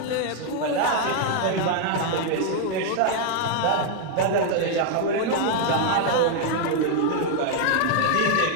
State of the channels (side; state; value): both; different; correlation 0.00